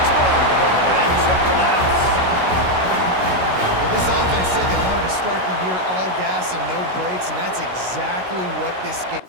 more for that trip to the house. Well, this offense said they wanted to start the year all gas and no brakes, and that's exactly what this game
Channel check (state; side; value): late; left; 16 ms